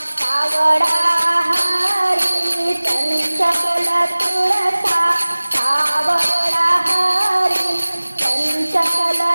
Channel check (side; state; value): both; inverted; correlation -1.00